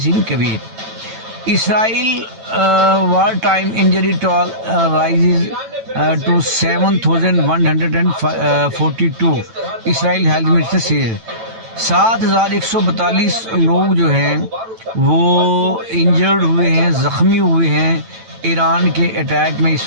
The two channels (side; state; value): left; late; 9.0 ms